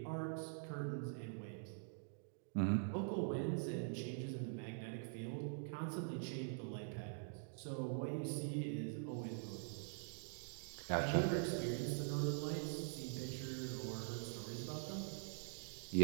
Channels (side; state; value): left; silent; digital silence